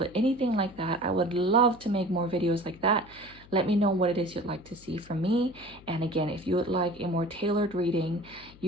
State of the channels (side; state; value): left; noise; hum, 22 dB below the sound